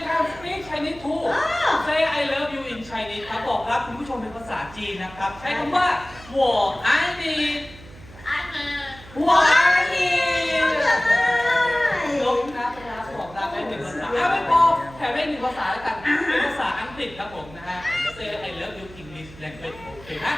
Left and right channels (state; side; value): noise; right; hum, 19 dB below the sound